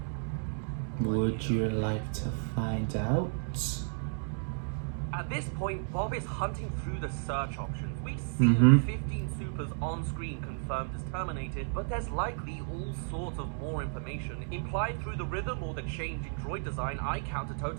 Would you like to find out? At this point, Bob is hunting through the search options. We've seen 15 supers on screen confirmed as terminated, but there's likely all sorts of more information. Implied through the rhythm or the change in droid design, I count a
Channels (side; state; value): left; silent; digital silence